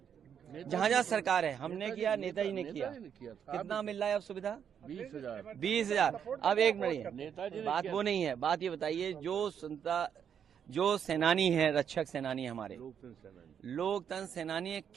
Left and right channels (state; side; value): quieter; left; 8.1 dB